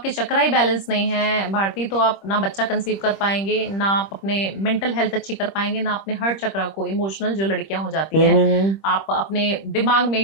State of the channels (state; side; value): late; right; 26 ms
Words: चक्रा ही बैलेंस नहीं है भारती, तो आप ना बच्चा कंसीव कर पाएंगे, ना आप अपने मेंटल हेल्थ अच्छी कर पाएंगे, ना अपने हर्ट चक्रा को, इमोशनल जो लड़कियां हो जाती हैं, आप अपने दिमाग में